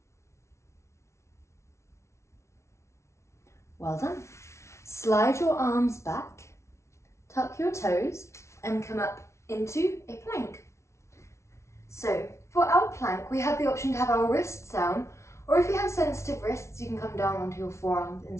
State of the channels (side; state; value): right; late; 0.13 ms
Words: Well done. Slide your arms back, tuck your toes, and come up into a plank. So for our plank, we have the option to have our wrists down, or if you have sensitive wrists, you can come down onto your forearms